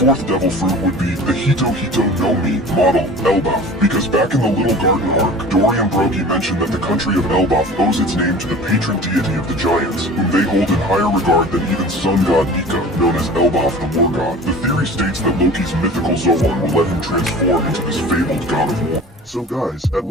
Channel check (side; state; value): both; normal; correlation 0.41